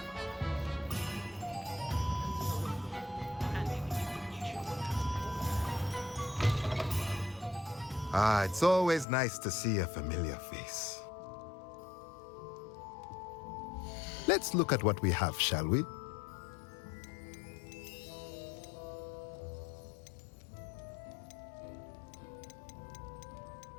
Ah, it's always nice to see a familiar face. Let's look at what we have, shall we?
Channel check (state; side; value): drops out; right; at 9.1 s